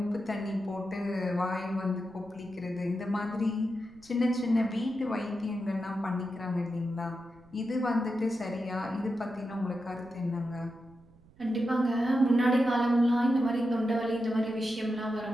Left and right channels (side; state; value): right; noise; rumble, 26 dB below the sound